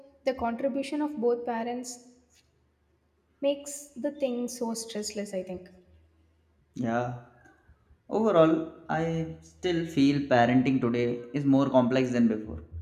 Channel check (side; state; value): both; identical; correlation 1.00